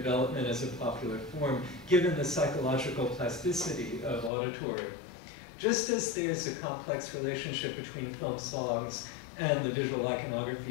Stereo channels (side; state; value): right; drops out; at 4.3 s